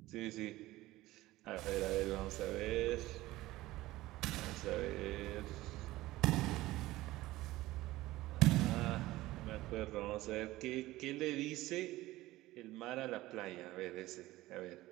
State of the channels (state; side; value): quieter; left; 17.5 dB